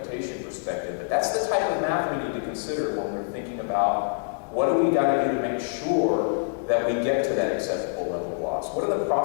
perspective. But that's the type of math we need to consider when we're thinking about what do we got to do to make sure that we get to that acceptable level of loss. What are the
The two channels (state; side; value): silent; right; 61 dB below the other